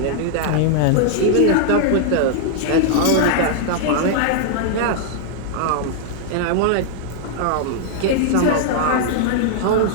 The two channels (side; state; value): both; different; correlation -0.01